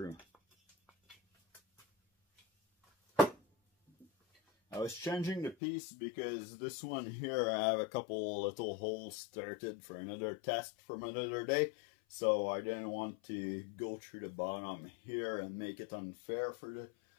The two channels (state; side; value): drops out; right; at 5.6 s